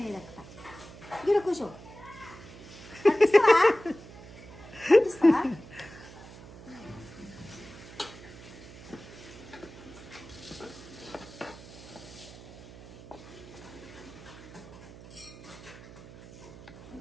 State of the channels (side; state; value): right; noise; hum, 17 dB below the sound